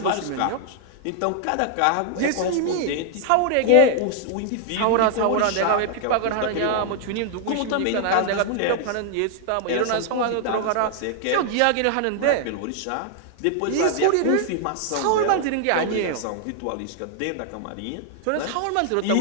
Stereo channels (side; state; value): both; different; correlation 0.00